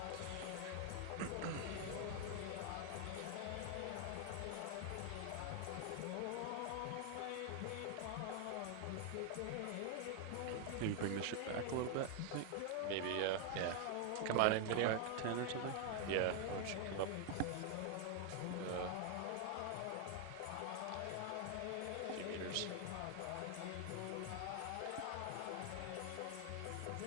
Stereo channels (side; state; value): both; different; correlation 0.00